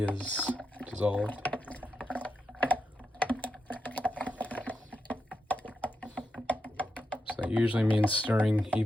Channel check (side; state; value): both; normal; correlation 0.86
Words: dissolved. So that usually means stirring